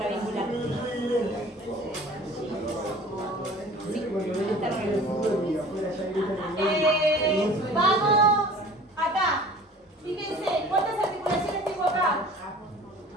Vamos acá. Fíjense, ¿cuántas articulaciones tengo acá?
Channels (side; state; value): both; normal; correlation 0.46